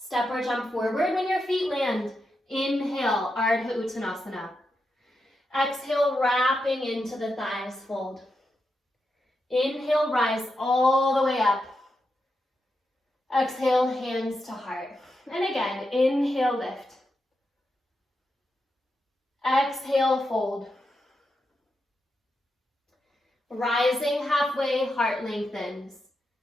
or jump forward when your feet land. Inhale, Ardha Uttanasana. Exhale, wrapping into the thighs, fold. Inhale, rise all the way up. Exhale, hands to heart. And again, inhale, lift. Exhale, fold. Rising halfway, heart lengthens.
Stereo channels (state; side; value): normal; both; correlation 0.86